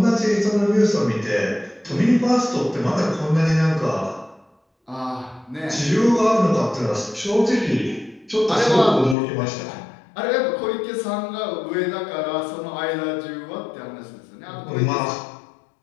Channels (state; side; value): drops out; right; at 9.2 s